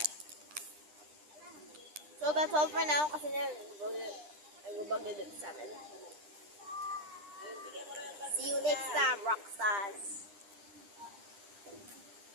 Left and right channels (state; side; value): late; left; 9.9 ms